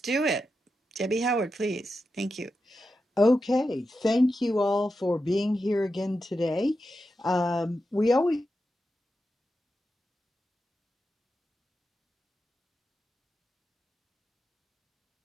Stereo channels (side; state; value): both; normal; correlation 0.89